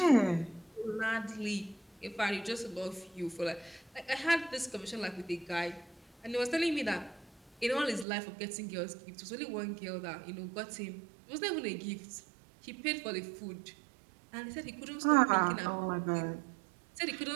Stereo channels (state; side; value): drops out; left; at 8.1 s